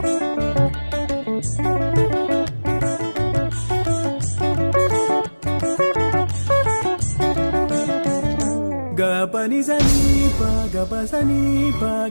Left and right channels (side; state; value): both; inverted; correlation -1.00